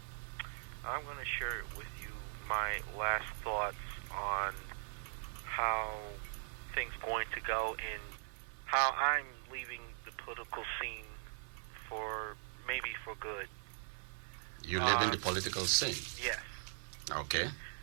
I'm going to share with you my last thoughts on how things going to go and how I'm leaving the political scene for maybe for good. You live in the political scene? Yes. Okay.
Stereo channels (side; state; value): left; silent; 51 dB below the other